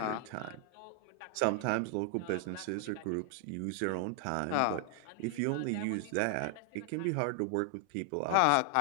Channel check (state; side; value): different; both; correlation 0.00